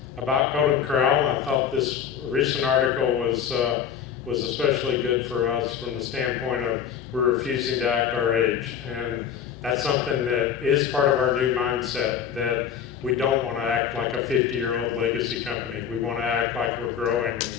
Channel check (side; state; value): right; quieter; 8.3 dB